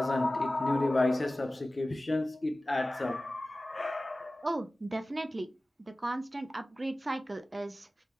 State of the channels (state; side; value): normal; both; correlation 0.96